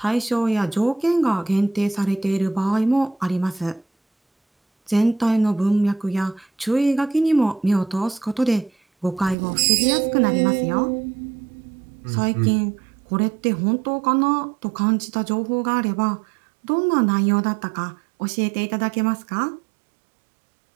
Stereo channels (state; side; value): drops out; left; at 9.3 s